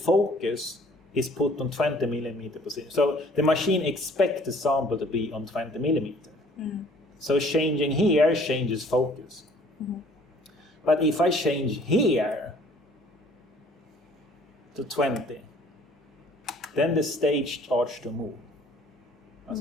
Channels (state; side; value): normal; both; correlation 0.56